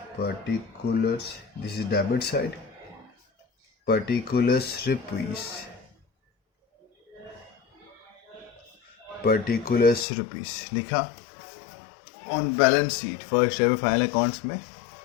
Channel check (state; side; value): drops out; right; at 10.1 s